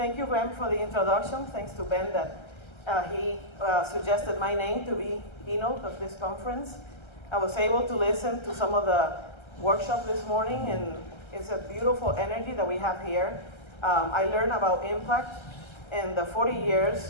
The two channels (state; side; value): late; right; 1.3 ms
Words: you, Ben, for the introduction. Thanks to Ben that he suggested my name to be keynote of this conference. I was able to listen to some of the workshop this morning, and it's a beautiful energy that we have here. I learned about impact and the 40